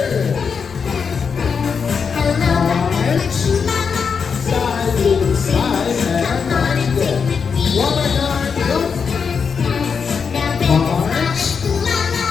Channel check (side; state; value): right; quieter; 6.0 dB